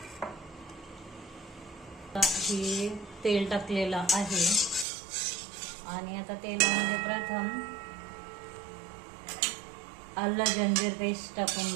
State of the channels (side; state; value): left; drops out; at 4.9 s